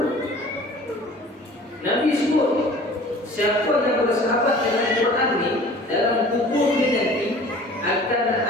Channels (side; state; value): both; normal; correlation 0.46